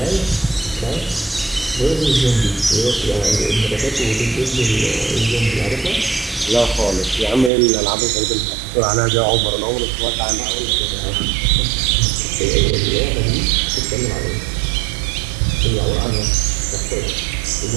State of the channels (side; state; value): left; drops out; at 7.5 s